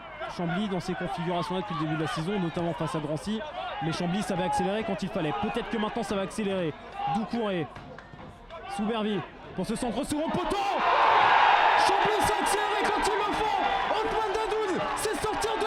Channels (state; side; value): identical; both; correlation 1.00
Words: Chambly dans ces configurations-là depuis le début de la saison, notamment face à Drancy. Mais Chambly savait accélérer quand il fallait. Peut-être que maintenant ça va accélérer. Doucouré, Soubervi pour ce centre second poteau. Chambly s'est accéléré quand il le faut. Othman Dadoun c'est sortir de